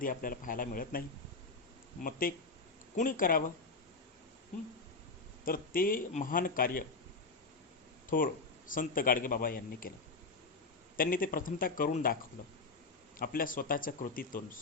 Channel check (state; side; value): quieter; right; 3.9 dB